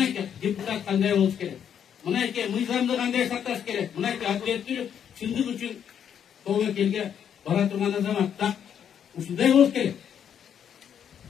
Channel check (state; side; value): quieter; right; 8.6 dB